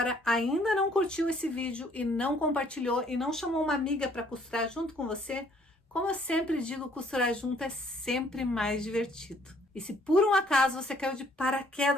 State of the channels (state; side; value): normal; both; correlation 0.62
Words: ainda não curtiu esse vídeo e não compartilhou e não chamou uma amiga para costurar junto com você? Como eu sempre digo, costurar junto é sempre mais divertido. E se por um acaso você caiu de